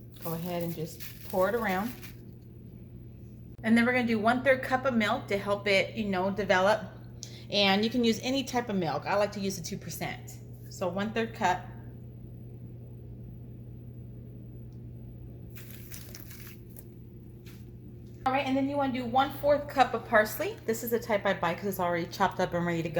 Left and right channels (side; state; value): both; identical; correlation 1.00